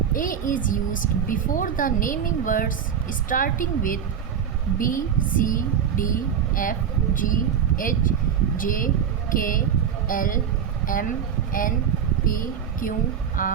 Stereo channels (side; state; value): left; quieter; 8.1 dB